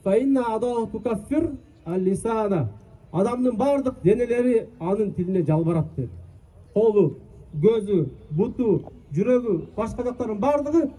"Фа инна адалу тукаффир ал-лисана." Адамдын бардык денелери анын тилине жалбарат деди. Колу, көзү, буту, жүрөгү, башка жактардын бардыгы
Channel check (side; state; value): both; identical; correlation 1.00